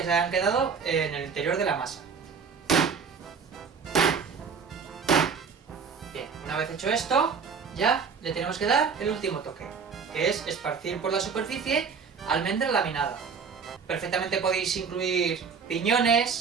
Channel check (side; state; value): left; quieter; 5.9 dB